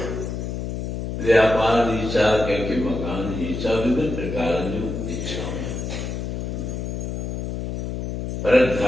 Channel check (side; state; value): left; noise; hum, 4 dB below the sound